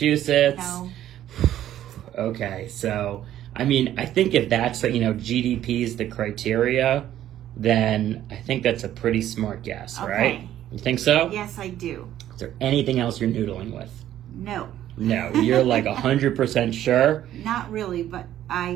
No. Okay, so I mean, I think if that's GDP is the criteria, then I think that's a pretty smart guess, right? You think so? Yes, I do. Is there anything else you're noodling with? No. No, you're like 100% sure? Not really, but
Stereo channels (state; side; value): quieter; left; 12.2 dB